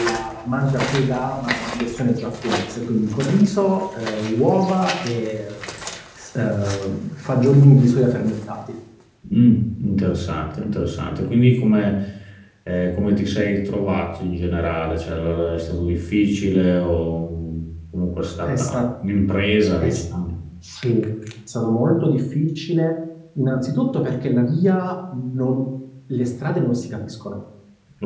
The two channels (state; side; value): identical; both; correlation 1.00